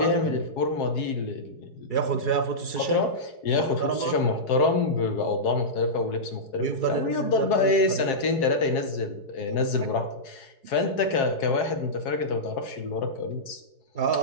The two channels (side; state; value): right; late; 4.7 ms